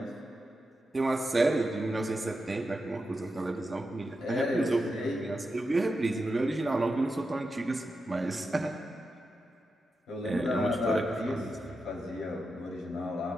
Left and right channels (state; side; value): normal; both; correlation 0.88